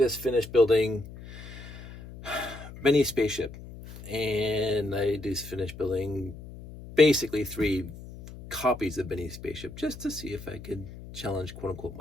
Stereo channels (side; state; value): left; noise; hum, 14 dB below the sound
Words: finished building Benny's Spaceship, and I just finished building basically 3 copies of Benny's Spaceship just to see if I could challenge, quote unquote,